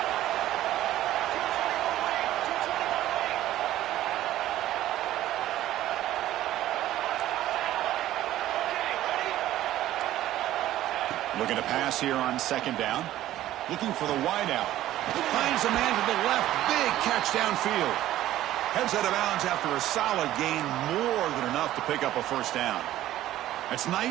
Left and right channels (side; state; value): left; quieter; 13.9 dB